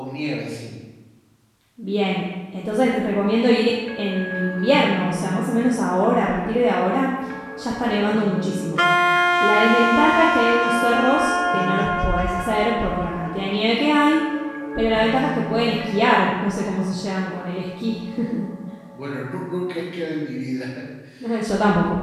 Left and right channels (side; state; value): both; identical; correlation 1.00